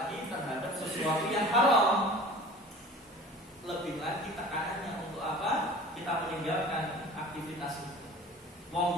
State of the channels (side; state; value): both; normal; correlation 0.42